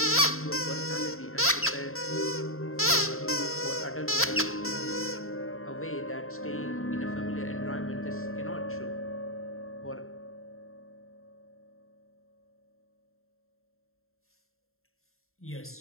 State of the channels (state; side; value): late; right; 0.62 ms